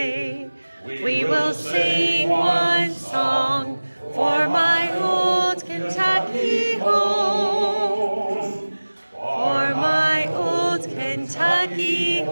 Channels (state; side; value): inverted; both; correlation -1.00